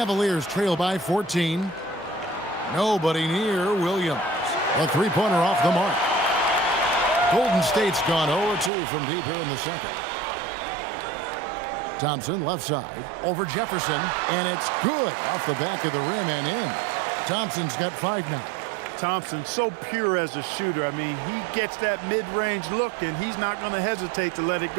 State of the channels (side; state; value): left; drops out; at 8.7 s